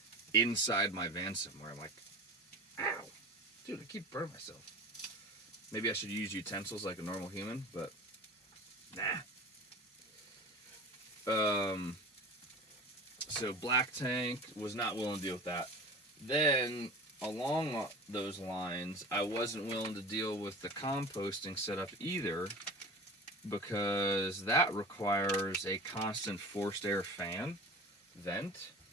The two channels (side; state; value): both; normal; correlation 0.35